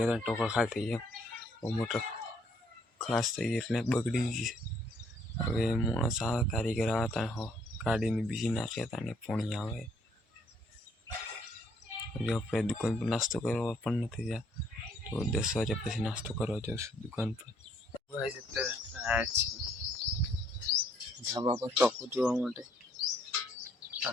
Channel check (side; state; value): both; normal; correlation 0.66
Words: ટોકા ખાલી થઈ ગયા. મોટર ખાસ થઈ ગઈ એટલે બગડી ગઈ. હવે માણસ આવે કારીગર આવે ત્યાં ગાડીને બીજી નાખ્યા હતા ને પોણી આવે. હજુ આપણે દુકાન પર નાસ્તો કરવા પણ નથી ગયા. તો 10 વાગ્યા પછી નાસ્તો કરવા જઈશું દુકાન પર. ધાબા પર ટોકો જોવા માટે